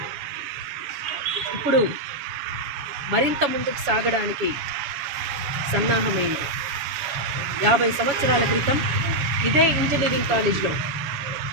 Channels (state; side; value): late; left; 7.0 ms